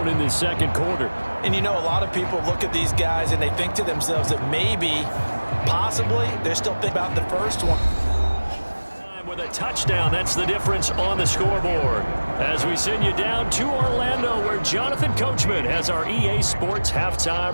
in the second quarter. And you know, a lot of people look at these guys and they think to themselves that maybe, possibly, they're still thinking about the first one. With a touchdown, that's the difference on the scoreboard. As we send you down to Orlando, where Jonathan Coachman has our EA Sports halftime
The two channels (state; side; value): inverted; both; correlation -1.00